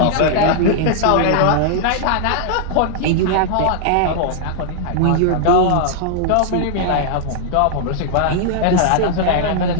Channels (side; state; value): both; different; correlation 0.00